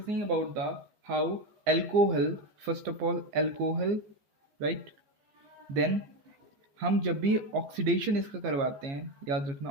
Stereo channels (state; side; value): late; left; 15 ms